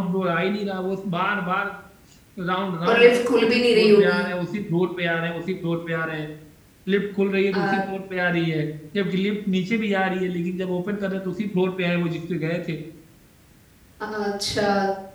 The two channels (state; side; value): identical; both; correlation 1.00